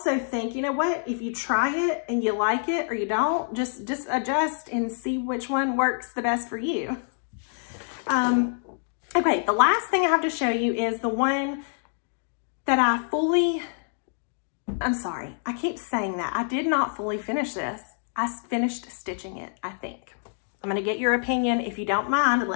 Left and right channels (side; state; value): right; silent; digital silence